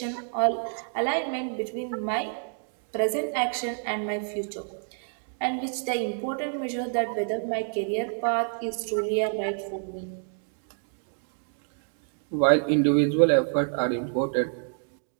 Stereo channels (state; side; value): silent; left; 59 dB below the other